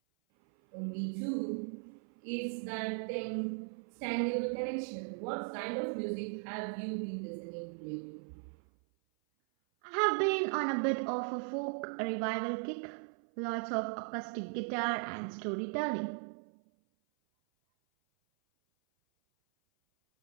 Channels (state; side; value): silent; left; 53 dB below the other